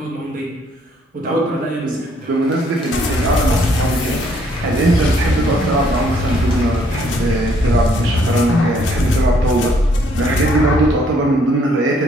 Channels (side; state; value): both; normal; correlation 0.66